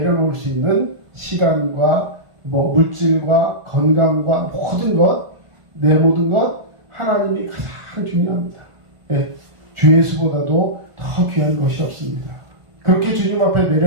수 있는 시간과 물질과 건강과 모든 것, 내 모든 것 하나님이 가장 중요합니다. 주 예수보다도 더 귀한 것이 없습니다. 그렇게 주님 앞에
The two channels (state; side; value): late; left; 1.5 ms